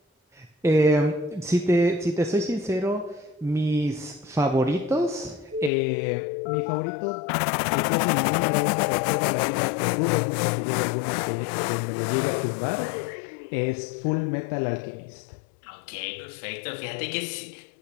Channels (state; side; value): drops out; right; at 5.7 s